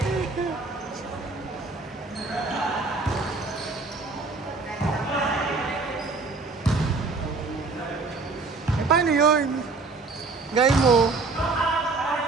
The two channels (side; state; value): left; quieter; 3.9 dB